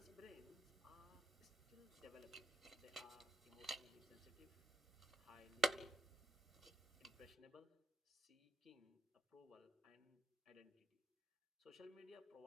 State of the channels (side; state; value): both; normal; correlation 0.80